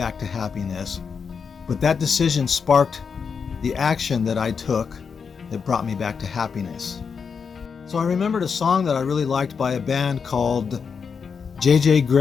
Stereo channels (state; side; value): quieter; right; 6.0 dB